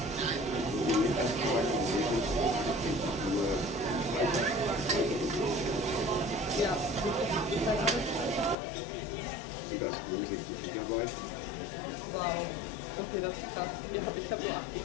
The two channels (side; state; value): right; drops out; at 8.6 s